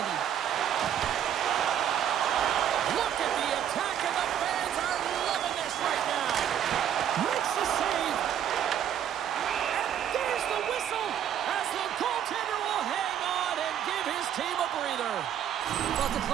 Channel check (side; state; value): left; quieter; 9.7 dB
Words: Look at the attack, and the fans are loving this right now. Makes the save. And there's the whistle as the goaltender will hang on and give his team a breather. Well, it's a